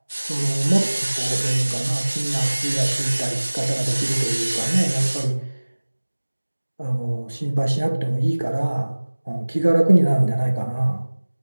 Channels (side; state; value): both; inverted; correlation -1.00